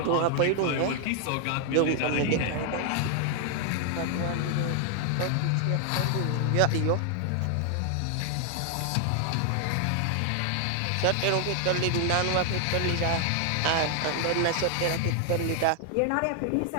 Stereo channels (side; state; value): both; different; correlation 0.00